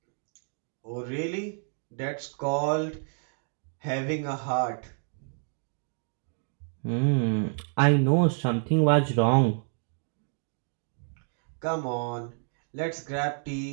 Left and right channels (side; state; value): left; silent; 56 dB below the other